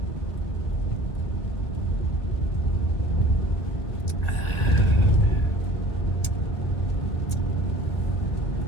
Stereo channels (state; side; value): late; right; 2.1 ms